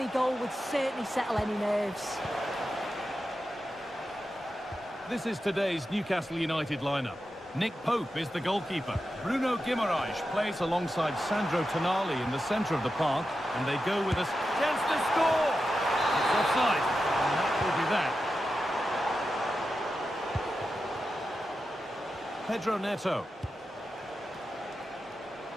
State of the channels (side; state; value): both; normal; correlation 0.90